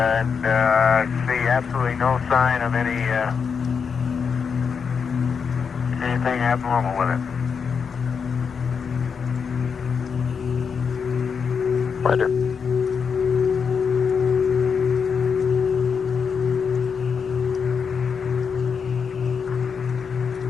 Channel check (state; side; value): quieter; right; 6.2 dB